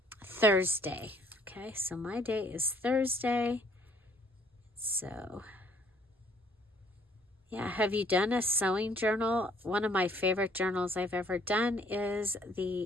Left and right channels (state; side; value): normal; both; correlation 0.61